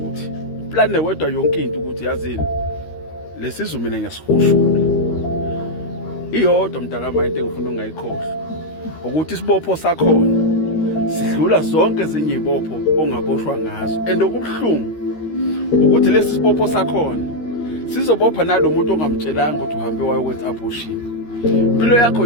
Uplane wedwa yonke into ukuthi yazini lesizwe mina ngiyasihushula. Iyodwa mntakama into engifuna ungayikhohlwa ukuthi isibopho sakhona sidlula zonke ezinye izibopho ongaboshwa ngazo. Okubhlungu ukuthi lesi sibopho sakhona sizobopha nalomuntu ongamtshelanga ukuthi uhambe wayokwenza abortion. Impilo yakho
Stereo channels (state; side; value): late; right; 13 ms